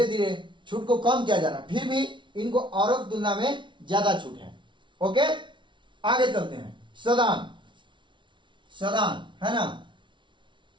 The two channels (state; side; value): late; left; 0.24 ms